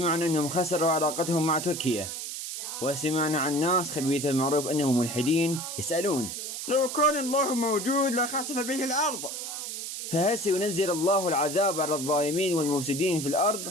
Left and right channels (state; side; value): noise; right; hiss, 6 dB below the sound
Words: أنهم خسروا علاقتهم مع تركيا، وسمعنا عن ناس خبيثة المعروف أنهم ملحدين يسألون لو كان الله موجود لخسف به الأرض. فهل سينزل الله العذاب على الظالمين والمفسدين في